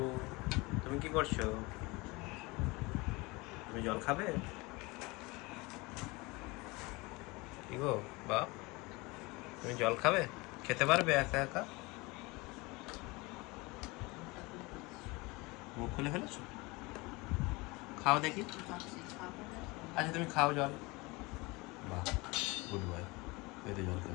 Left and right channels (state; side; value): quieter; right; 24.3 dB